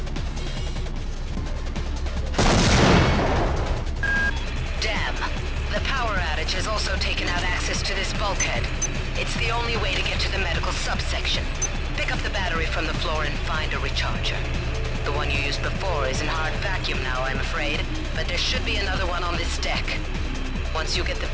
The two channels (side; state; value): both; identical; correlation 1.00